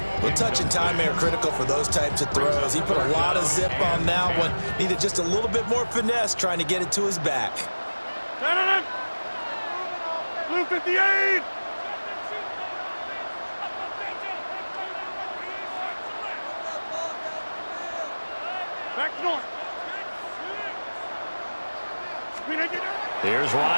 Well, touch and time are critical for those types of throws. He put a lot of zip on that one. Needed just a little bit more finesse trying to get it to his back. Blue 58! Back north. Here's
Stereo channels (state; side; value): inverted; both; correlation -1.00